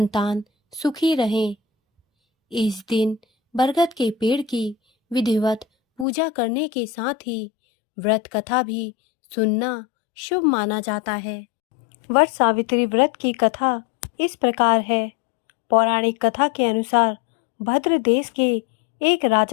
सुखी रहें। इस दिन बरगद के पेड़ की विधिवत पूजा करने के साथ ही व्रत कथा भी सुनना शुभ माना जाता है। वट सावित्री व्रत की कथा इस प्रकार है। पौराणिक कथा के अनुसार भद्र देश के एक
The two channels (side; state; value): right; drops out; at 6.1 s